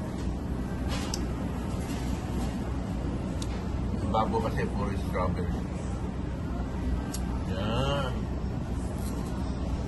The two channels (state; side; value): identical; both; correlation 1.00